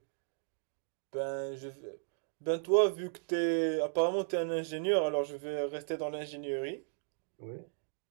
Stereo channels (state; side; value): silent; left; digital silence